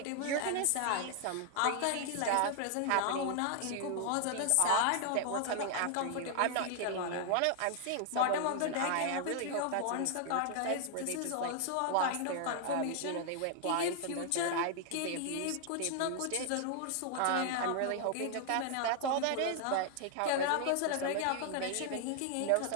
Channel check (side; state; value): both; different; correlation 0.00